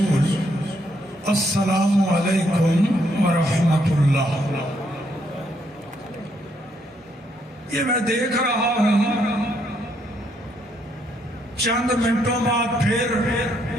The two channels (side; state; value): both; normal; correlation 0.73